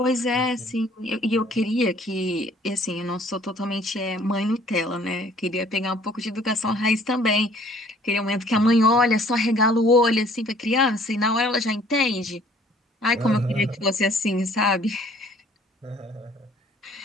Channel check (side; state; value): both; normal; correlation 0.57